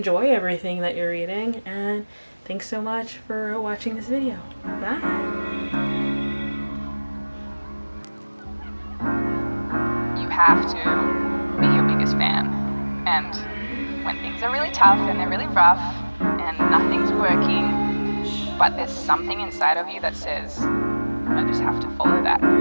everything that you're reading, and thanks so much for watching this video. Bye! You have to be your biggest fan, and when things are really tough and they're really rough and nothing's working, but there's something inside of you that says, I just have to follow that,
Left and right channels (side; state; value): both; inverted; correlation -1.00